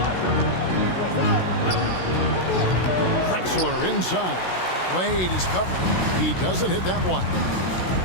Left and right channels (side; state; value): right; late; 16 ms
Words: Drexler inside. Wade is covering. He doesn't hit that one.